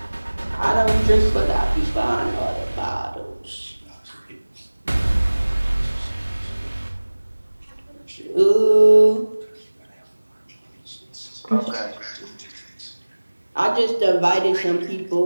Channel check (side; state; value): both; inverted; correlation -1.00